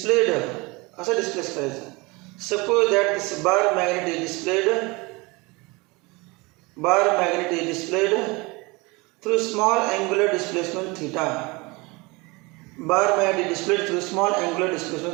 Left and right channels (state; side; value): quieter; left; 25.4 dB